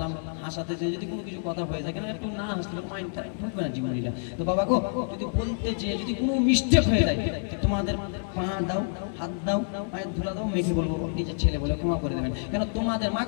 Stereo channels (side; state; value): right; silent; digital silence